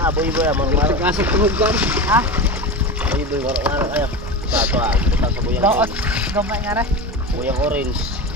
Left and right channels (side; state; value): both; normal; correlation 0.25